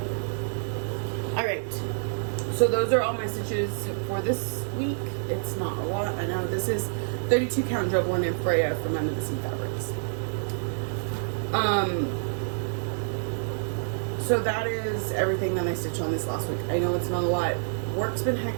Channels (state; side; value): silent; left; digital silence